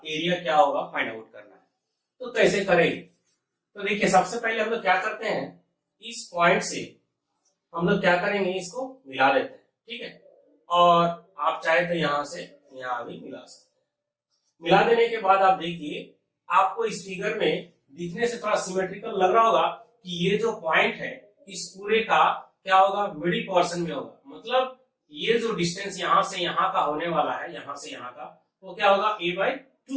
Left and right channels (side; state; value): both; identical; correlation 1.00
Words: एरिया क्या होगा फाइंड आउट करना है। तो कैसे करेंगे? तो देखिए सबसे पहले हम लोग क्या करते हैं, इस पॉइंट से हम लोग क्या करेंगे, इसको मिला देते हैं, ठीक है। और आप चाहे तो यहां से यहां भी मिला सकते हैं। मिला देने के बाद आप देखिए आपको इस फिगर में दिखने से थोड़ा सिमेट्रिकल लग रहा होगा कि ये जो पॉइंट है इस पूरे का क्या होगा, मिडिल पोर्शन में होगा। मतलब ये जो डिस्टेंस यहां से यहां का होने वाला है, यहां से यहां का, वो क्या होगा a/2